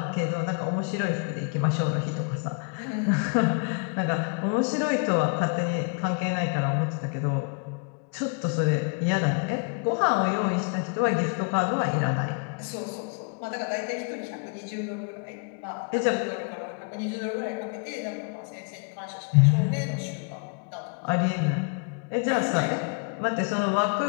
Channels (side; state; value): right; quieter; 37.7 dB